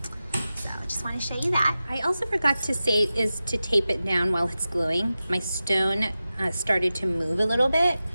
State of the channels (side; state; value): both; inverted; correlation -0.94